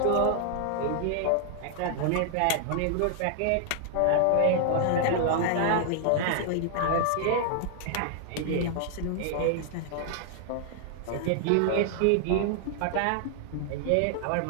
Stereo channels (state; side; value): different; both; correlation -0.01